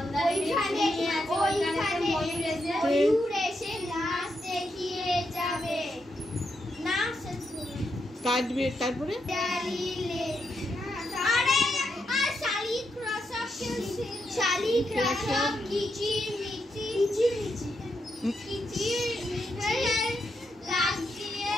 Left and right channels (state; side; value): normal; both; correlation 0.82